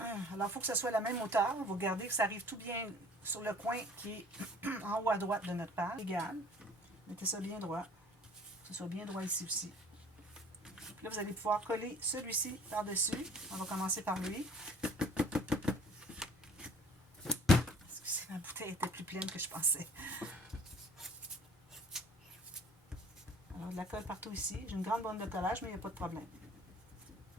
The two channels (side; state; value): both; normal; correlation 0.50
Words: Alors, il faut que ce soit la même hauteur. Vous regardez que ça arrive tout bien sur le coin qui est en haut à droite de notre page. Égal. Mettez ça bien droit. Que ce soit bien droit ici aussi. Là, vous allez pouvoir coller celui-ci par-dessus. On va commencer par lui. Excusez, ma bouteille était plus pleine que je pensais. Alors, de la colle partout ici. J'ai une grande bande de collage, mais il n'y a pas de problème.